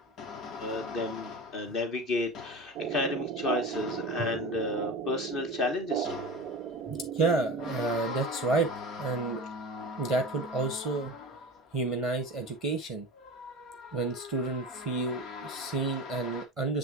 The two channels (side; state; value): both; normal; correlation 0.31